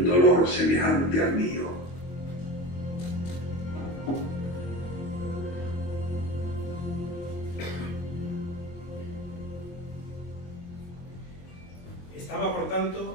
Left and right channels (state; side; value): late; right; 23 ms